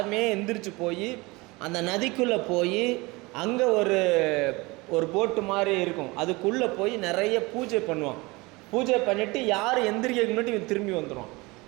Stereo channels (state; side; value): quieter; left; 24.0 dB